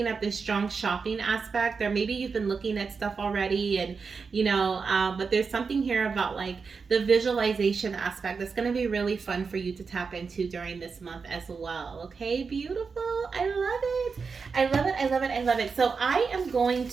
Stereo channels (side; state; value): left; quieter; 5.1 dB